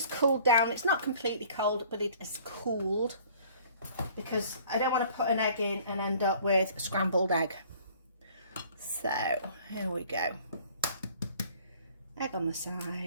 cooled down. It's not completely cold, but it is cooled, because I don't want to put an egg in and end up with a scrambled egg. So here we go. Egg on the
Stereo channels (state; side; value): inverted; both; correlation -0.53